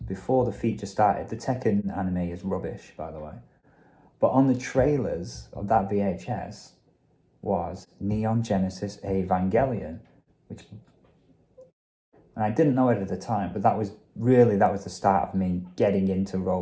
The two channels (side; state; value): both; identical; correlation 1.00